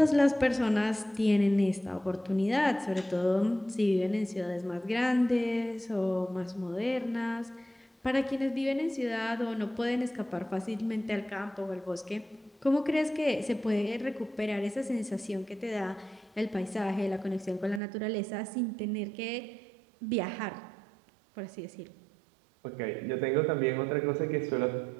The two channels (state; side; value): drops out; left; at 17.8 s